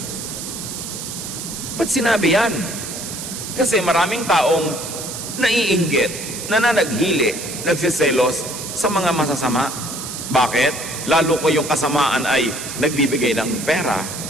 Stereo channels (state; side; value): noise; right; hiss, 8 dB below the sound